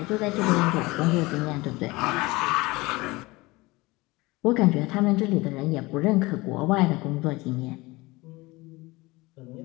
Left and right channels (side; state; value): right; quieter; 22.1 dB